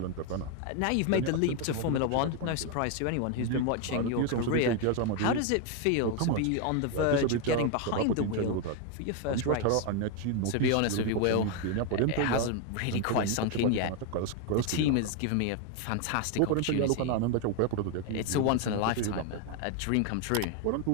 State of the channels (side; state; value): both; different; correlation 0.01